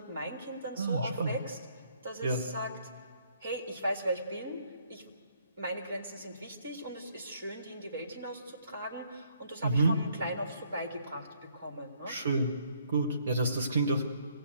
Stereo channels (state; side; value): inverted; both; correlation -0.67